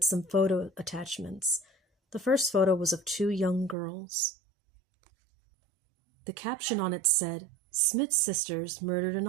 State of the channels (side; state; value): left; drops out; at 3.8 s